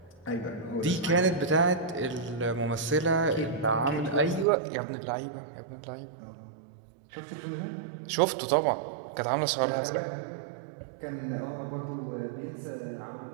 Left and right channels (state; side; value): drops out; left; at 4.5 s